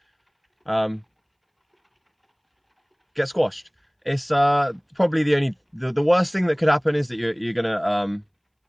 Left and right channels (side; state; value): both; identical; correlation 1.00